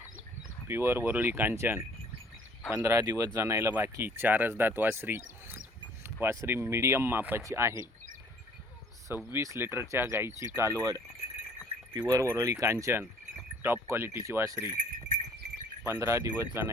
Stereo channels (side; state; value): both; normal; correlation 0.56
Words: प्युअर वरोळी कांचन 15 दिवस जनायला बाकी 4 दात वासरी मीडियम मापाची आहे। 26 लिटरच्या गाईची कालवड प्युअर वरोळी कांचन टॉप क्वालिटीची वासरी 15 दिवस